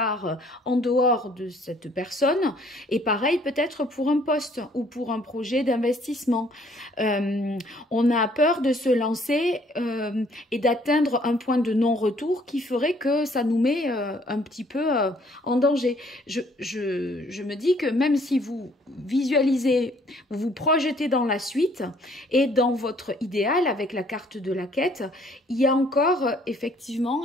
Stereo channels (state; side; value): normal; both; correlation 0.62